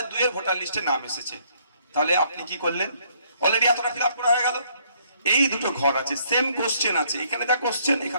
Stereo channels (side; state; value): both; inverted; correlation -0.66